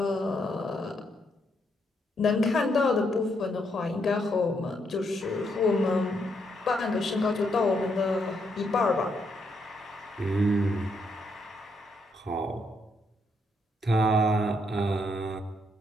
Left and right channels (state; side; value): normal; both; correlation 0.76